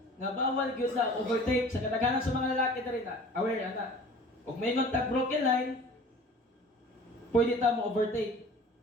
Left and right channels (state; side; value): normal; both; correlation 0.45